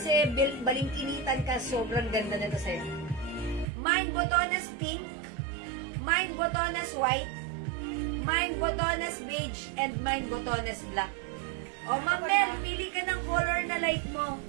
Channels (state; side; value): drops out; left; at 3.7 s